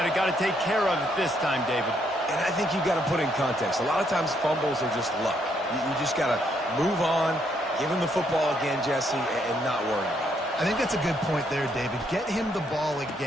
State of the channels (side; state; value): both; normal; correlation 0.73